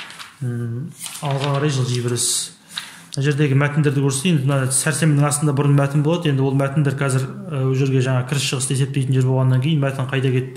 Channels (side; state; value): both; identical; correlation 1.00